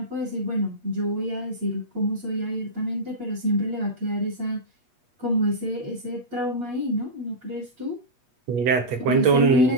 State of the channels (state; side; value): late; left; 8.3 ms